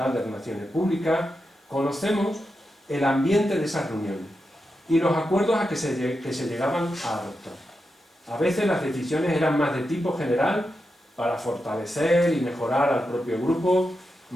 de relaciones públicas, conocemos el ambiente de esas reuniones y los acuerdos a que se llegaban a adoptar. A veces las decisiones eran más de tipo general para fortalecer y mejorar al propio grupo,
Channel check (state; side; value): normal; both; correlation 0.88